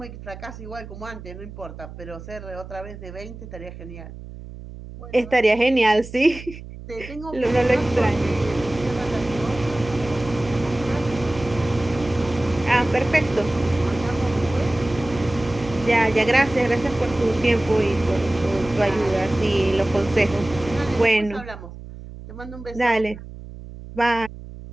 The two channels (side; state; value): right; noise; hum, 14 dB below the sound